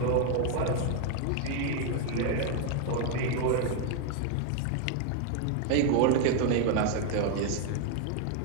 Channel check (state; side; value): different; both; correlation 0.00